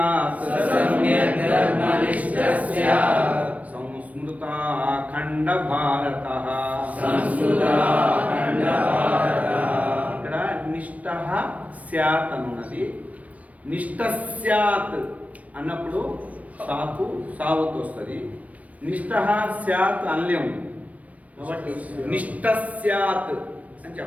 सम्यक् धर्मनिष्ठः स्यात् సంస్మృతాఖండ భారతః. संस्कृताखण्डभारतः. ఇక్కడ నిష్టః స్యాత్ అన్నది. నిష్ట స్యాత్ అన్నప్పుడు సాకు సావత్ వస్తుంది. నిష్ఠ స్యాత్ అనలేము కాబట్టి నిష్ఠ స్యాత్ అని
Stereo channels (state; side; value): late; left; 0.068 ms